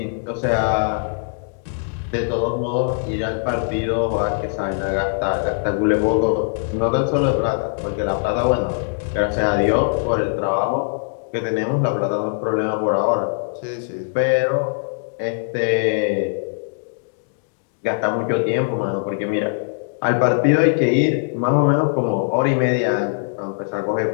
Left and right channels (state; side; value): silent; right; digital silence